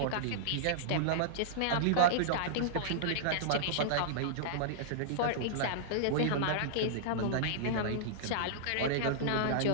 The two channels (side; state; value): both; different; correlation -0.02